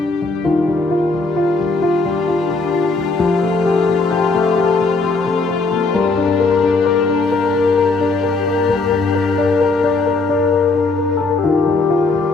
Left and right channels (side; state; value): right; quieter; 3.7 dB